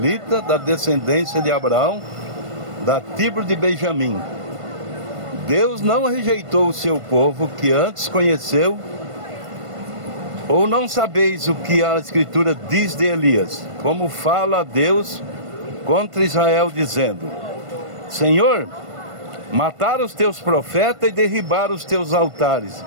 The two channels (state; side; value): late; left; 1.5 ms